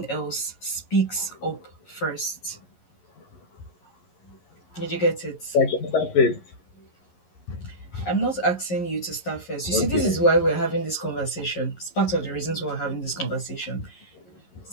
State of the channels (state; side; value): late; right; 11 ms